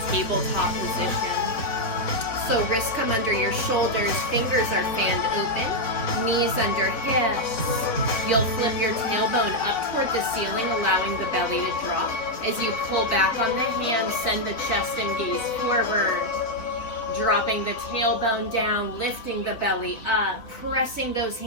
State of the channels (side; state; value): right; late; 4.1 ms